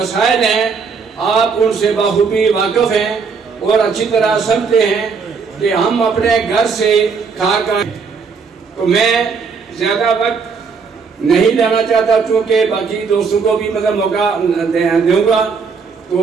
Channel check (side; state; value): left; quieter; 5.3 dB